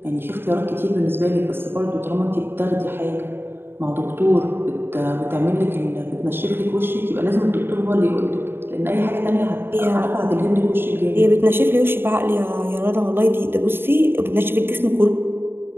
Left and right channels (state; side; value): late; left; 0.11 ms